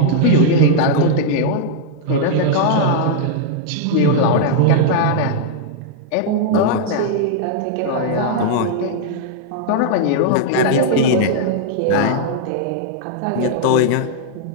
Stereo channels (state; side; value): different; both; correlation -0.01